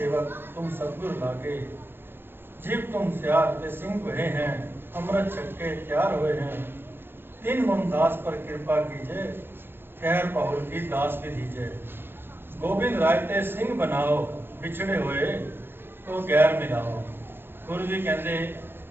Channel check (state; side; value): late; left; 0.10 ms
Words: तुम सतगुर लागे, जीव तुम सियार के सिंह हुए हैं, अमृत छक्के तैयार हुए हैं, तीन मुमदास पर कृपा कीजिए, खैर पहुल की दास भी दीजिए, गोविंद राय ते सिंह बनाओ, बिछड़े हुए तो गैर मिलाओ। गुरु जी कहते